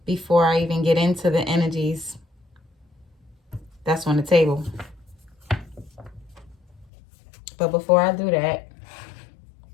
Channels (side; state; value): right; drops out; at 6.9 s